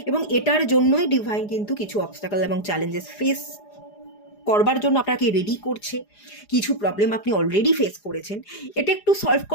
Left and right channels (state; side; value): late; right; 4.9 ms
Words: এবং এটার জন্যই ডিভাইন কিন্তু কিছু অবস্টাকল এবং চ্যালেঞ্জেস ফেস করবার জন্য আপনাকে রেডি করছে। কিছু প্রবলেম আপনি অলরেডি ফেস করেছেন, এটা একটু সলভ